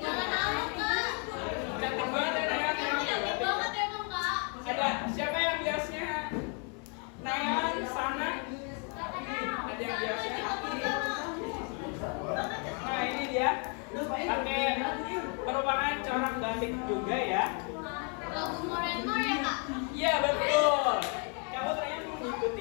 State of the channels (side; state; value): right; quieter; 38.4 dB